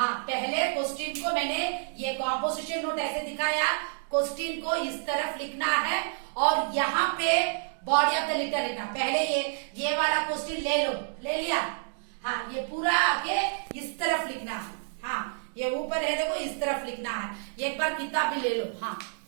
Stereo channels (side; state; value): left; silent; digital silence